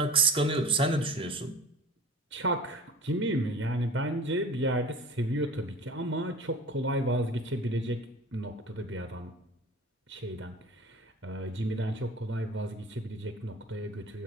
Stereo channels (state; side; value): normal; both; correlation 0.40